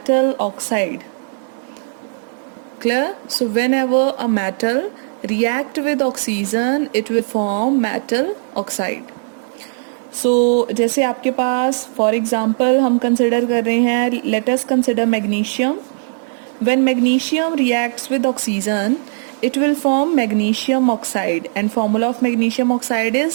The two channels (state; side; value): silent; left; digital silence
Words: oxide. Clear? So whenever a metal react with oxygen, it will form metal oxide. So जैसे आपके पास for example हम consider कर रहे हैं, let us consider magnesium. When magnesium reacts with oxygen, it will form magnesium oxide, and formula of magnesium oxide